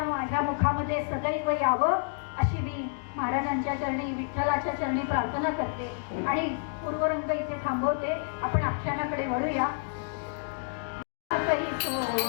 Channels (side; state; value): right; silent; digital silence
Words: माझ्या मुखामध्ये सदैव यावं अशी मी महाराजांच्या चरणी विठ्ठलाच्या चरणी प्रार्थना करते आणि पूर्वरंग इथे थांबवते. आपण आख्यानाकडे वळूया.